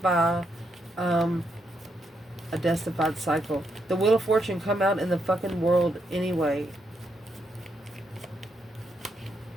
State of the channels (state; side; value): normal; both; correlation 0.79